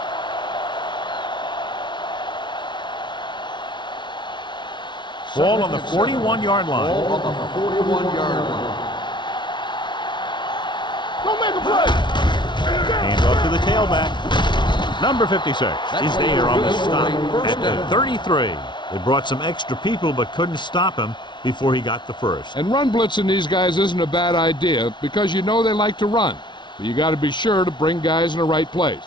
Ball on the 41-yard line. Ball on the 41-yard line. Don't make a play. Hand off to the tailback. Number 56 is there on the stop at the 33. They brought some extra people but couldn't stop him before he got the first. And run blitzing these guys isn't a bad idea because you know they like to run. But you got to be sure to bring guys in the right place.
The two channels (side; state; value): right; late; 0.23 ms